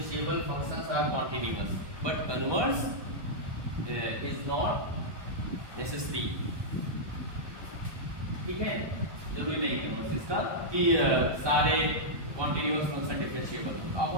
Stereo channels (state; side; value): late; left; 1.2 ms